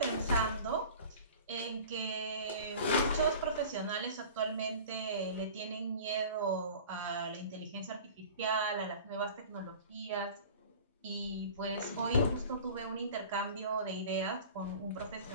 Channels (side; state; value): both; inverted; correlation -0.41